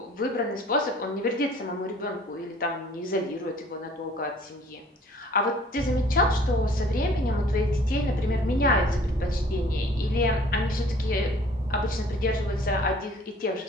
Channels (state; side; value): normal; both; correlation 0.53